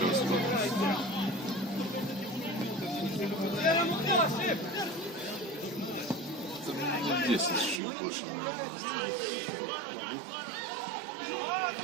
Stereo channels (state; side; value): drops out; left; at 7.8 s